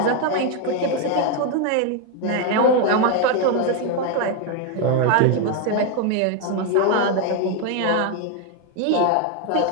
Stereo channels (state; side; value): different; both; correlation 0.02